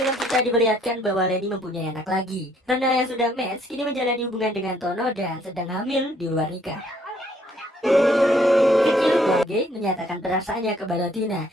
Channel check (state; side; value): normal; both; correlation 0.65